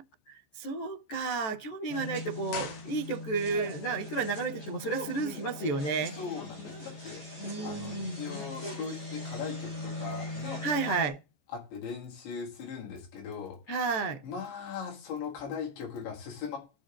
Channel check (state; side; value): late; right; 14 ms